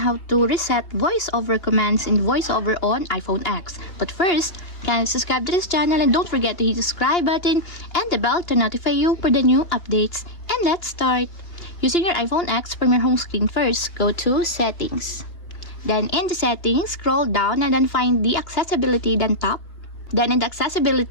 to reset voiceover commands in voiceover on iPhone X. But first, kindly subscribe to this channel and don't forget to hit the subscribe button and the bell to notify you for the new updates. And let's start. Using your iPhone X from your home screen first, go to Settings. Then in the Settings, scroll down and then find the Accessibility, then tap. Then in the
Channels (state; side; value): late; right; 2.8 ms